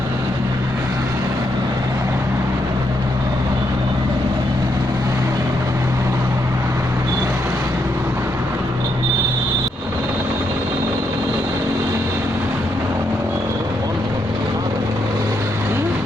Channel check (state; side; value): normal; both; correlation 0.78